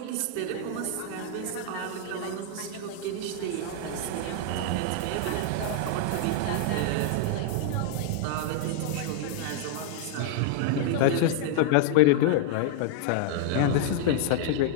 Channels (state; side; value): different; both; correlation -0.01